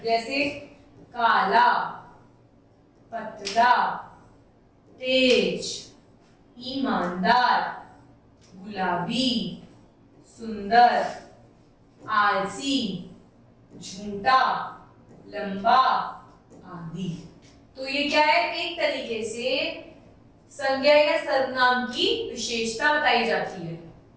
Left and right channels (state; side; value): identical; both; correlation 1.00